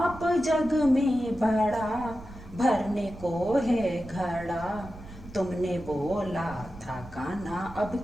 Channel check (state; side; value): noise; right; rumble, 17 dB below the sound